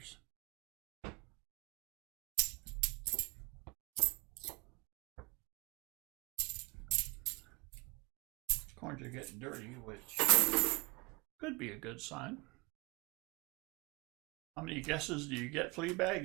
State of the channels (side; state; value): left; quieter; 27.3 dB